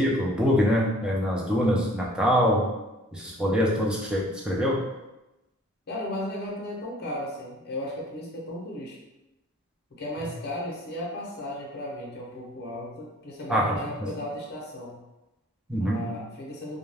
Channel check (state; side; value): normal; both; correlation 0.54